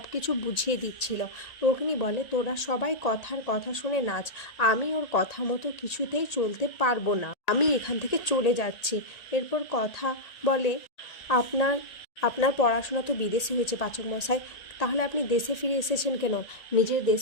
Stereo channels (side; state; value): right; late; 1.8 ms